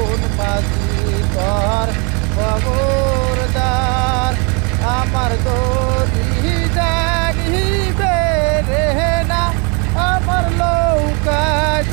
মাঝি তোর খবরদার আমার দরি জানিবে রে না আমার নৌকা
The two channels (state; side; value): quieter; left; 33.7 dB